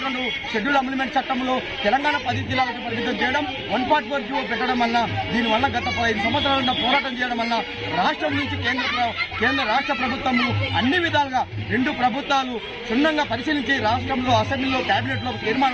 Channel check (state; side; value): identical; both; correlation 1.00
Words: షెడ్యూల్ అమెండ్మెంట్ చట్టంలో తెలంగాణ 10 జిల్లాలకు పరిమితం చేయడం, 144 జీవో పెట్టడం వల్ల దీనివల్ల గత 15 సంవత్సరాల పోరాటం చేయడం వల్ల రాష్ట్రం నుంచి కేంద్ర రాష్ట్ర ప్రభుత్వము అన్ని విధాలుగా 2 ప్రభుత్వాలు క్షుణ్ణంగా పరిశీలించి రాష్ట్రంలో అసెంబ్లీలో కేబినెట్ లో